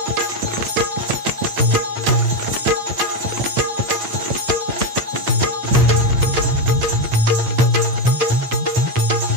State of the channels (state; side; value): late; left; 8.9 ms